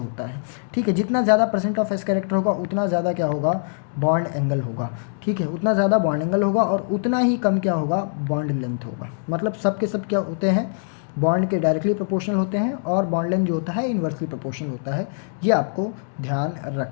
है, ठीक है। जितना ज़्यादा परसेंट ऑफ एस कैरेक्टर होगा उतना ज़्यादा क्या होगा, बॉन्ड एंगल होगा, ठीक है। उतना ज़्यादा बॉन्ड एंगल होगा और उतना ही कम क्या होगा, बॉन्ड लेंथ होगा। मतलब सब के सब क्या होते हैं, बॉन्ड के डायरेक्टली प्रोपोर्शनल होते हैं, और बॉन्ड लेंथ जो होता है इन्वर्सली प्रोपोर्शनल होता है। ये आपको ध्यान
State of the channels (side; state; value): right; silent; digital silence